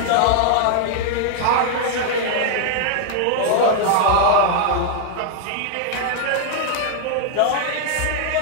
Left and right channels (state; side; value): different; both; correlation 0.00